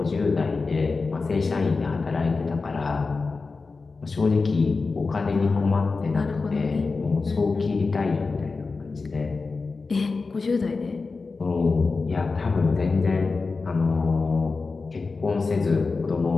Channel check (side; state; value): right; quieter; 4.1 dB